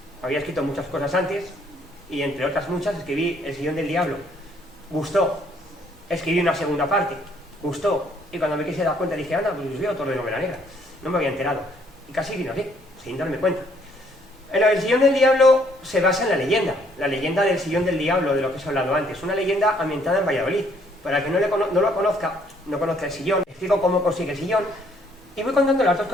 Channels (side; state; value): both; normal; correlation 0.66